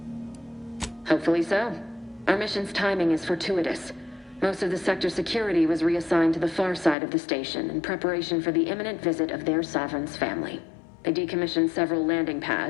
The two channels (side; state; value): right; drops out; at 7.0 s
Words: Hopefully so. Our mission's timing is fortuitous. Most of the sector security was reassigned to the far side of the station in preparation for the imminent visit of their sovereign's family. They decommissioned several landing